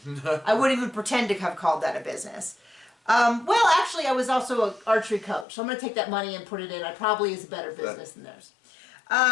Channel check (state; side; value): drops out; right; at 5.5 s